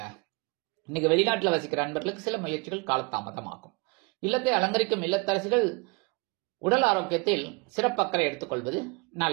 இன்னைக்கு வெளிநாட்டுல வசிக்கிற அன்பர்களுக்கு சில முயற்சிகள் காலதாமதமாகும். இல்லத்தை அலங்கரிக்கும் இல்லத்தரசிகள் உடல் ஆரோக்கியத்தில் சிறப்பக்கறை எடுத்துக்கொள்வது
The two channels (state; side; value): quieter; left; 28.7 dB